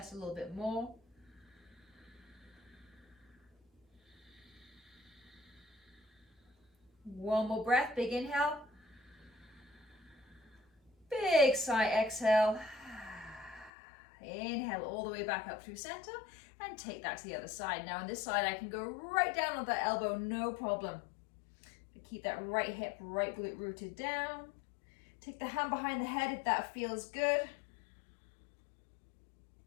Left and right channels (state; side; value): drops out; right; at 13.7 s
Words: a little bit more. One more breath, big inhale. Big sigh, exhale. Inhale all the way back up through center and take that to the other side. Now on this side, I can go right down on that elbow, no problem. Keep that right hip, right glute rooted down. Take the hand behind the head if that feels good.